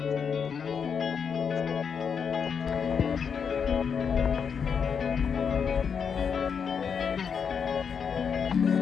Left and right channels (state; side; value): quieter; right; 6.6 dB